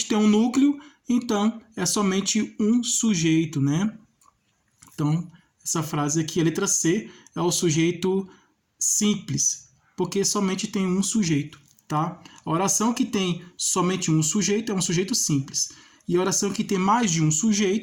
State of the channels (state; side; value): identical; both; correlation 1.00